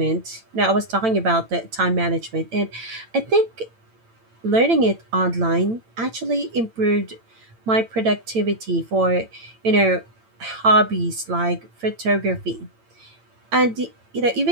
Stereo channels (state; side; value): late; left; 8.9 ms